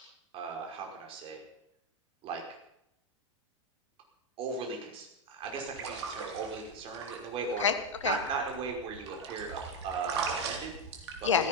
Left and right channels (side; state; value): both; normal; correlation 0.06